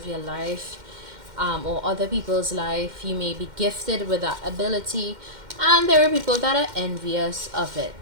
your life, or other people's life. You may be gifted with that ability, and there are people that are envious of it.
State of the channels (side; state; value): left; late; 2.1 ms